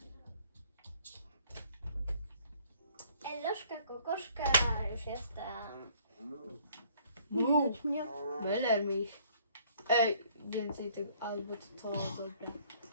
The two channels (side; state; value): both; inverted; correlation -0.60